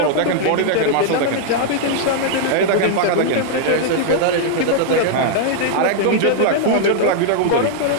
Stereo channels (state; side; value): different; both; correlation -0.01